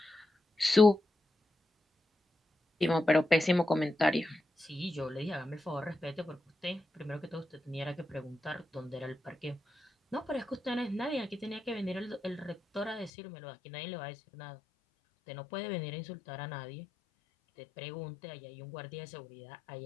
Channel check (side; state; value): right; drops out; at 13.1 s